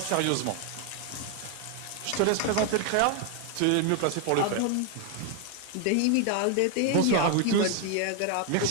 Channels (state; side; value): different; both; correlation 0.00